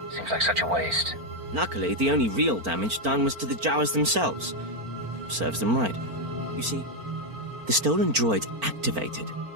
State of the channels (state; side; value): late; left; 4.4 ms